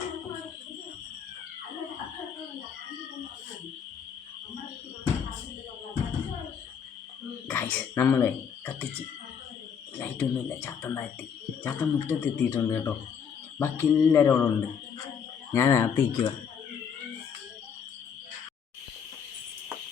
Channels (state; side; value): quieter; right; 7.2 dB